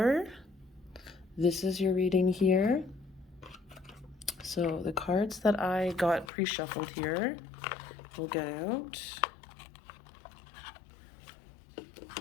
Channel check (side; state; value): right; drops out; at 6.3 s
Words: this is your reading here. So the cards that I got pre-shuffled here, we'll get out.